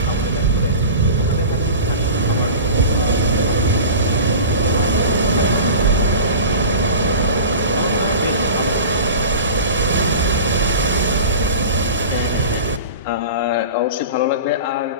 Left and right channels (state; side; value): inverted; both; correlation -0.36